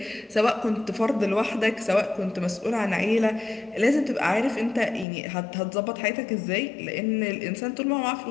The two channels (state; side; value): drops out; right; at 5.1 s